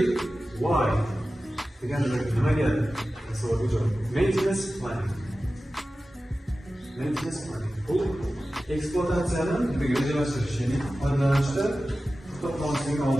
why? Nimaga? Savolga javob. Maintenance planning. Maintenance planning. Bu ekspluatatsiyani rejalashtirish, ya'ni foydalanishda to'xtatmaslikni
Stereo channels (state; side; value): normal; both; correlation 0.95